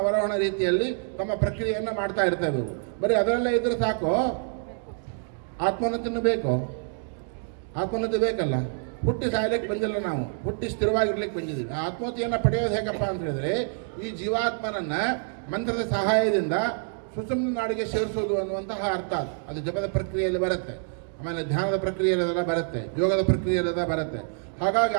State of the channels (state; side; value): silent; left; 57 dB below the other